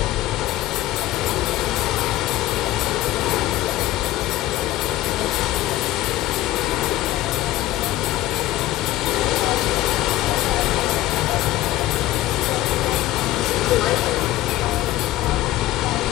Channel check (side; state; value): right; quieter; 15.5 dB